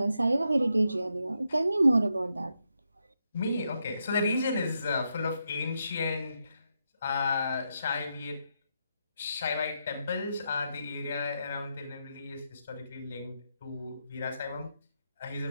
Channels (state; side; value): inverted; both; correlation -0.83